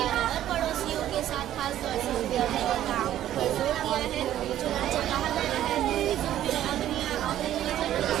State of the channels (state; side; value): quieter; left; 12.2 dB